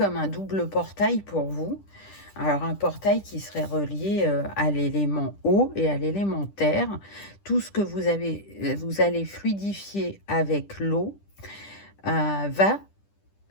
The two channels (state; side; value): late; right; 10 ms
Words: un double portail pour vous. Alors, un portail qui serait relié à l'élément eau et à l'élément terre. Tout ce que vous allez fluidifier avec l'eau va